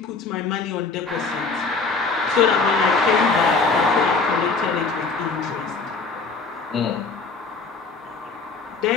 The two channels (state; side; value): quieter; right; 4.2 dB